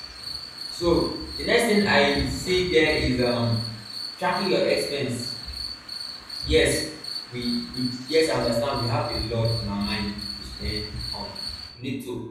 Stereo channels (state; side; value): identical; both; correlation 1.00